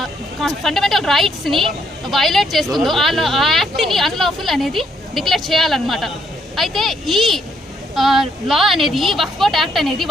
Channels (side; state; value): both; normal; correlation 0.72